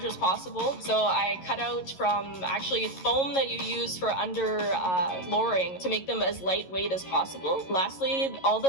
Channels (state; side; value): late; right; 11 ms